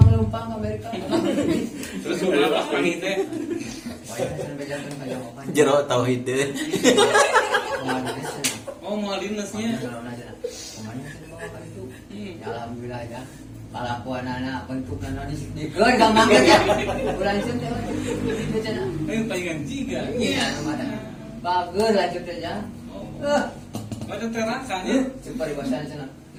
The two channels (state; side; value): identical; both; correlation 1.00